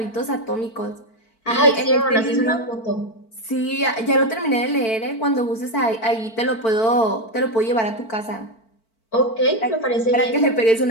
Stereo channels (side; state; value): right; late; 4.5 ms